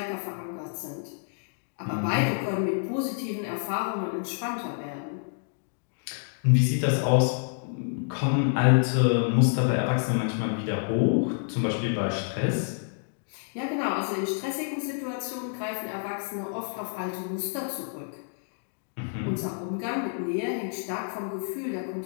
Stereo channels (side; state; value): right; silent; digital silence